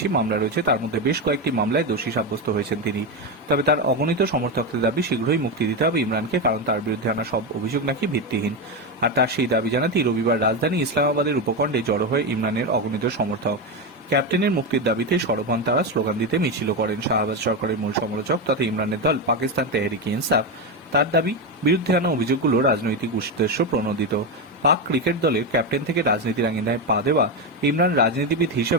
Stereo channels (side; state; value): both; normal; correlation 0.12